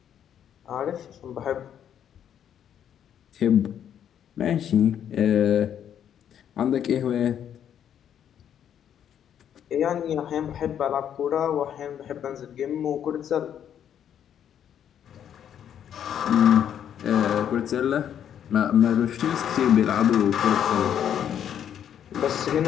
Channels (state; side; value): quieter; right; 9.4 dB